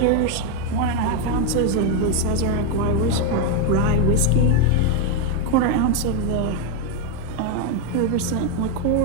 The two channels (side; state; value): both; different; correlation 0.01